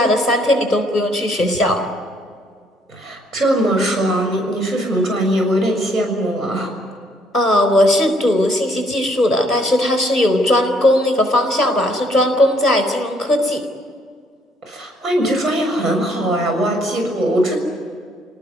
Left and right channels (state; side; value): normal; both; correlation 0.67